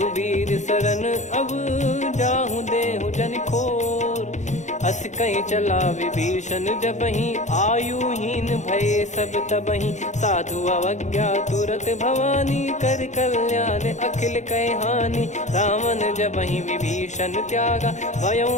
शरण अब, जाहूँ देहु जन खोर। अस कहीं चला विभीषण जबहि, आयुहीन भय सब तबहि। साधु अवज्ञा तुरत भवानी, कर कल्याण अखिल कह हानि। रावण जबहि विभीषण त्यागा, भयउ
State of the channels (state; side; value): late; right; 0.34 ms